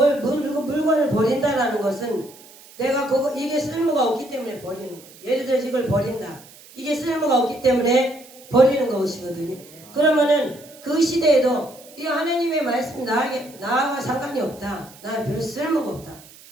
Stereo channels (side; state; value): right; noise; hiss, 22 dB below the sound